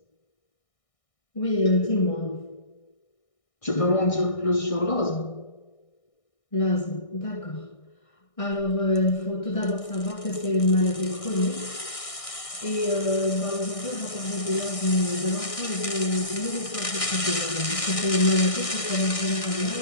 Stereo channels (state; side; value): late; right; 1.6 ms